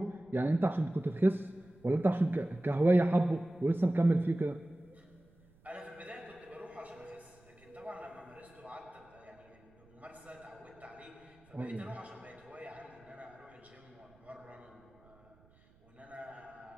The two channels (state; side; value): noise; right; rumble, 29 dB below the sound